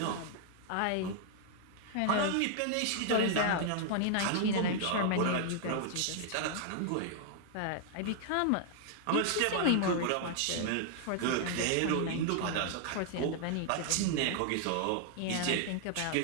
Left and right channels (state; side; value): different; both; correlation 0.00